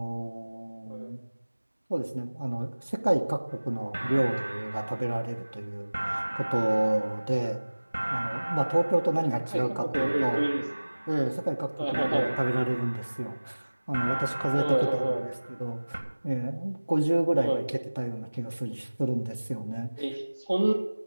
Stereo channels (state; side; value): inverted; both; correlation -1.00